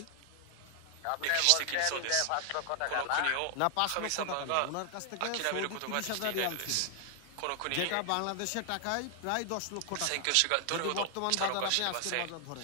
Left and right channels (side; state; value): both; different; correlation 0.00